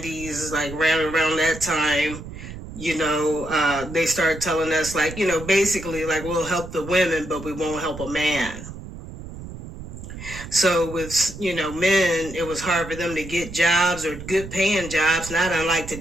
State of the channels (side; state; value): right; noise; rumble, 12 dB below the sound